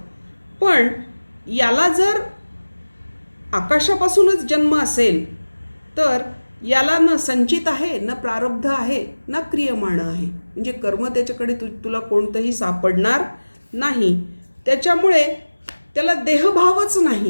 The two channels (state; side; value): inverted; both; correlation -1.00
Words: पण याला जर आकाशापासूनच जन्म असेल तर याला न संचित आहे, न प्रारब्ध आहे, न क्रियमाण आहे. म्हणजे कर्म त्याच्याकडे तुला कोणतंही सापडणार नाही. त्याच्यामुळे त्याला देहभावच